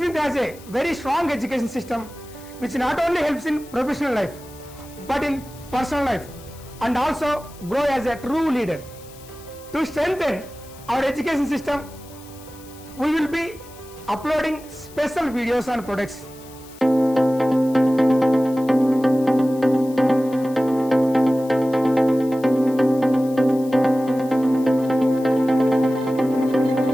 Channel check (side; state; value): left; noise; hiss, 22 dB below the sound